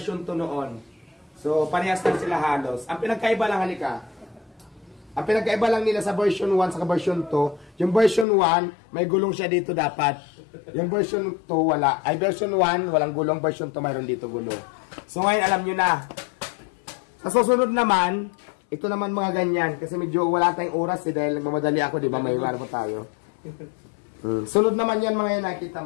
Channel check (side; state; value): right; drops out; at 8.2 s